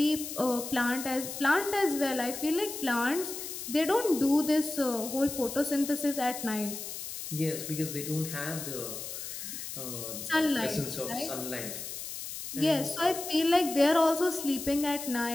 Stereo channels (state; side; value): noise; left; hiss, 8 dB below the sound